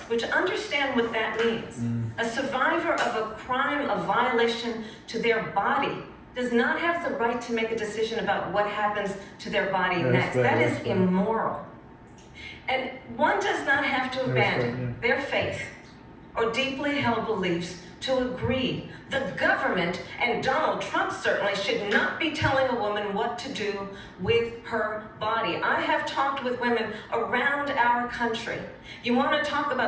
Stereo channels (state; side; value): identical; both; correlation 1.00